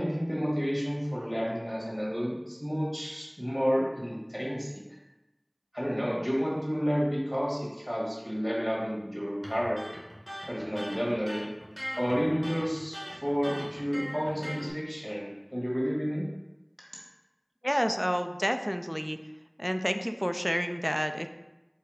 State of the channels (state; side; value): identical; both; correlation 1.00